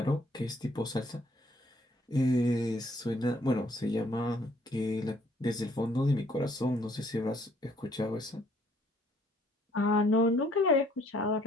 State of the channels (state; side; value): normal; both; correlation 0.63